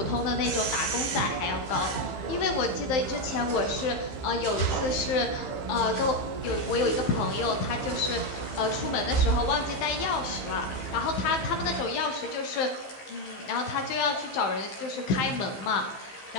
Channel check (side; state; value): right; late; 15 ms